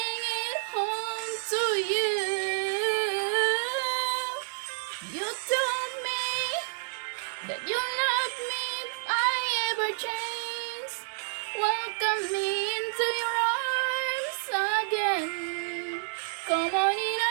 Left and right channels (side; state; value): left; silent; digital silence